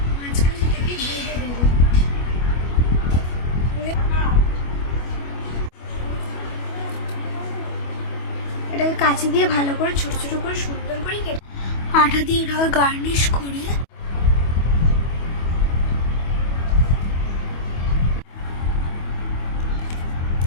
মাঝখান থেকে বেঁধে দেবো। এটাকে কাঁচি দিয়ে ভালো করে ছোট ছোট করে সুন্দর করে কেটে আঠা দিয়ে এটাকে গার্নিশ করে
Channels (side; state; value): right; late; 25 ms